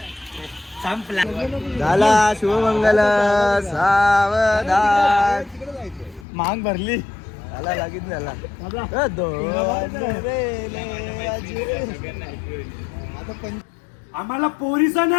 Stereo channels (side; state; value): right; drops out; at 6.2 s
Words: संपला झाला शुभमंगल सावधान मांग भरली झाला लागीत झाला आम्हाला पोरीचा